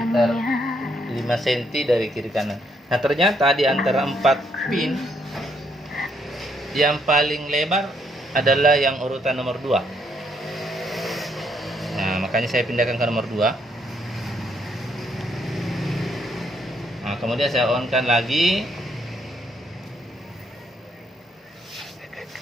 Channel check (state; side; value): normal; both; correlation 0.72